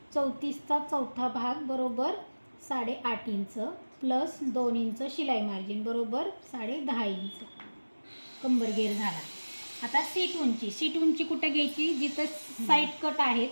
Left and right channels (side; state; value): both; inverted; correlation -1.00